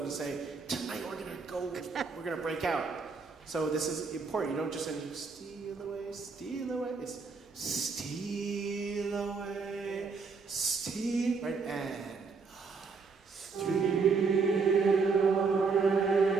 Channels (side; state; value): left; quieter; 4.8 dB